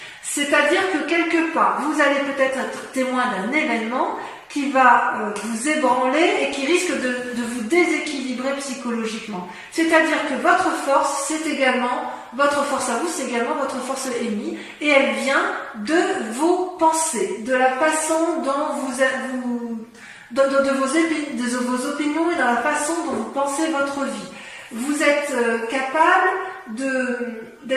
C'est-à-dire que quelque part, vous allez peut-être être témoin d'un événement qui va vous ébranler et qui risque de vous déséquilibrer psychologiquement. C'est-à-dire que votre force, votre force à vous, c'est également votre force ennemie, et elle vient de vos pensées, de la façon dont de vos opinions et dans la façon dont vous pensez votre vie. Vous êtes capable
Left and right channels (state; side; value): identical; both; correlation 1.00